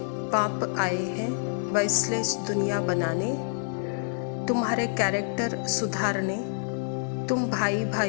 बाप आए हैं वॉइसलेस दुनिया बनाने, तुम्हारे कैरेक्टर सुधारने। तुम भाई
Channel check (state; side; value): silent; right; 60 dB below the other